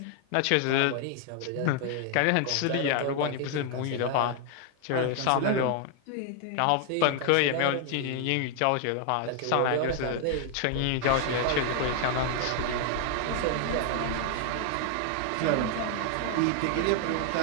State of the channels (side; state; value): both; different; correlation 0.00